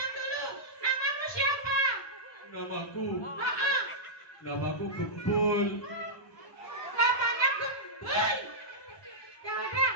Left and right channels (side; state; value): right; late; 1.2 ms